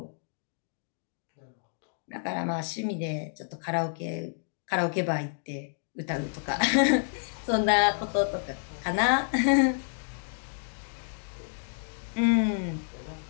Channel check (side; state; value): right; silent; digital silence